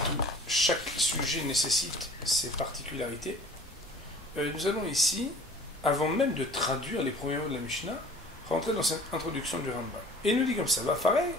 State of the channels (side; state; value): both; normal; correlation 0.47